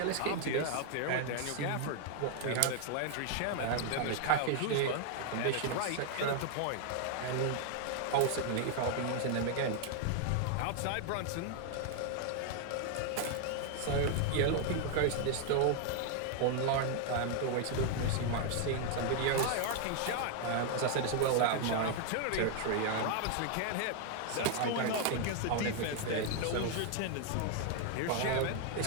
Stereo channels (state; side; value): different; both; correlation 0.00